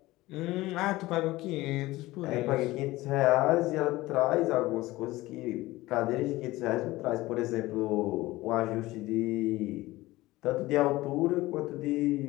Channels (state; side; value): quieter; right; 18.7 dB